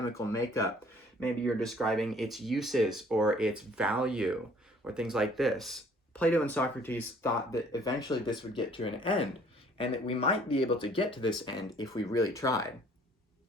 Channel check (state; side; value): normal; both; correlation 0.57